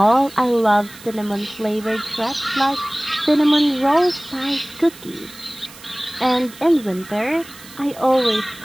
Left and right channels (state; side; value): noise; right; hiss, 19 dB below the sound